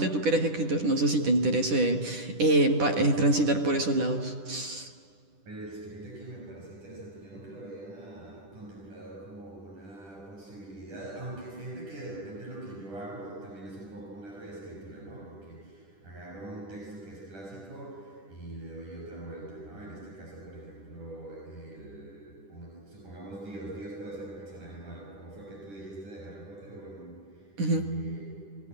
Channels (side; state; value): left; late; 10 ms